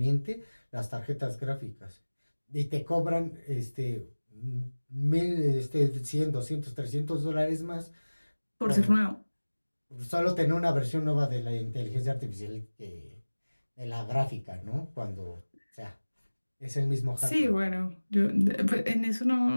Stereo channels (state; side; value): inverted; both; correlation -1.00